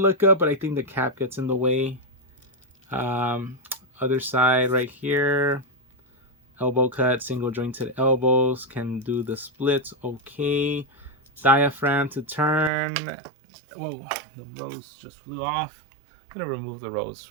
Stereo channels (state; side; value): drops out; left; at 12.7 s